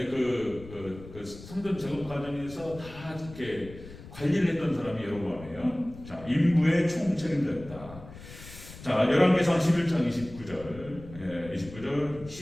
그 성전 재건 과정에서 다 이렇게 관리를 했던 사람이 여로보암이에요. 자, 인부의 총책임자였다. 자, 열왕기상 11장 29절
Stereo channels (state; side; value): noise; left; rumble, 16 dB below the sound